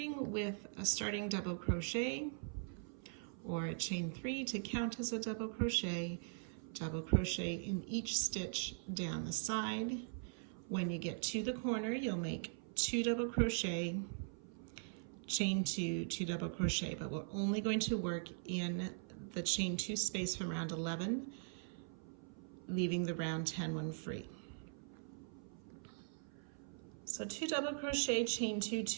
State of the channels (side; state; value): left; silent; 50 dB below the other